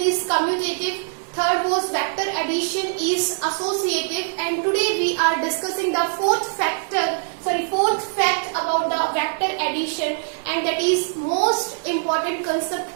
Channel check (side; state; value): left; silent; digital silence